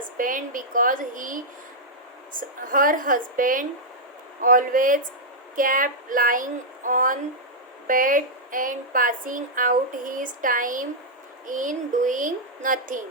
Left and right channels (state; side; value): normal; both; correlation -0.06